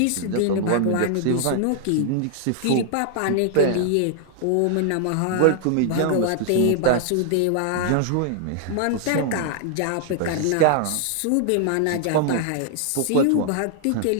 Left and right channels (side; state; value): both; different; correlation 0.00